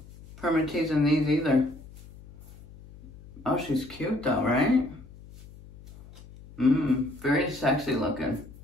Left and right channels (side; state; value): left; noise; hum, 19 dB below the sound